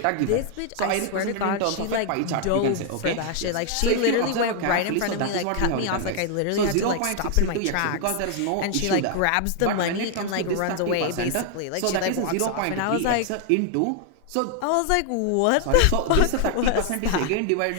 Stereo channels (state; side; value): different; both; correlation 0.00